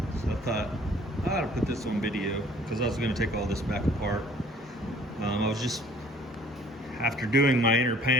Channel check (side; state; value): both; normal; correlation 0.55